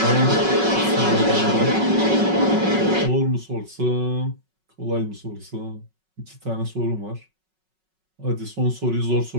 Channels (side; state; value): left; late; 5.4 ms